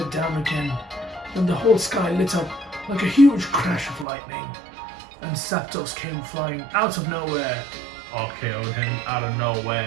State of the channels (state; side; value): drops out; left; at 4.0 s